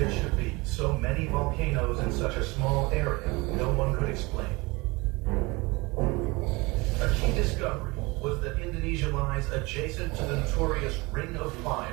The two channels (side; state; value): left; quieter; 24.5 dB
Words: there should be so many volcanoes in such a small area, no one could explain. A key discovery was that Indonesia lies adjacent to the notorious Ring of